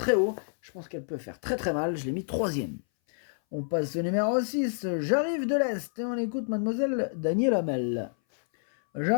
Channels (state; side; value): silent; right; 59 dB below the other